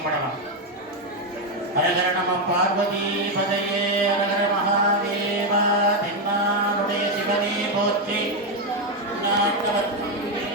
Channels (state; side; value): normal; both; correlation 0.06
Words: ஹரஹர நம பார்வதி பதையே, ஹரஹர மகாதேவா, தென்னாடுடைய சிவனே போற்றி, நாட்டவர்க்கும்